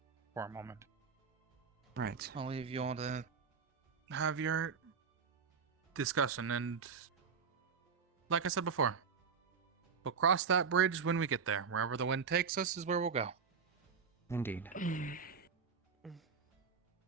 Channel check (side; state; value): left; quieter; 5.9 dB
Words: for a moment. Right. I'll leave you all to have your discussion, and like I said before, we'll cross that bridge when we get there. Wherever the wind takes us is where we'll go. Indeed.